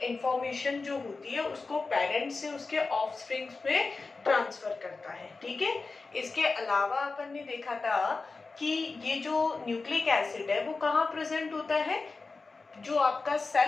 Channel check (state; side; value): quieter; right; 4.0 dB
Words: इंफॉर्मेशन जो होती है उसको पेरेंट्स से उसके ऑफस्प्रिंग्स में ट्रांसफर करता है। ठीक है, इसके अलावा अपन ने देखा था कि ये जो न्यूक्लिक एसिड है वो कहाँ प्रेजेंट होता है, जो आपका